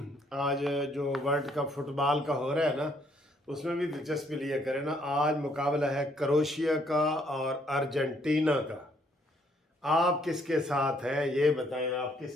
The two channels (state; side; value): normal; both; correlation 0.67